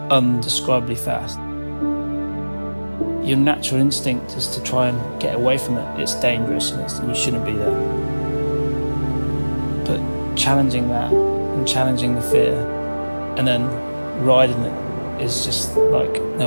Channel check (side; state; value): both; inverted; correlation -1.00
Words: undescribably fast. Your natural instinct is to try and get away from it. It's dangerous and you shouldn't be there. But challenging that and challenging the fear and then riding it is just like